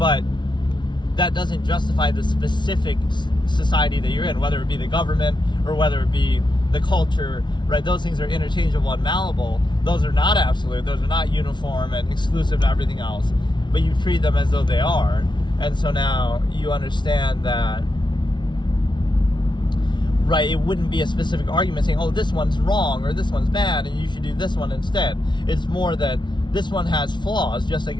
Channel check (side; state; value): right; late; 0.22 ms